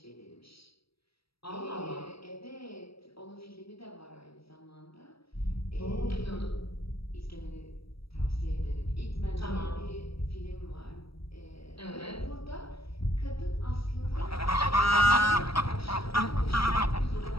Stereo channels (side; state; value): right; late; 0.76 ms